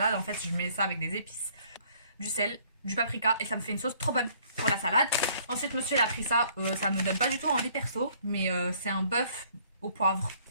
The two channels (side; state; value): both; inverted; correlation -0.61